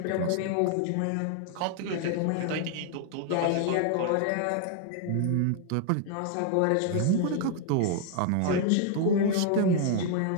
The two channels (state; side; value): different; both; correlation 0.00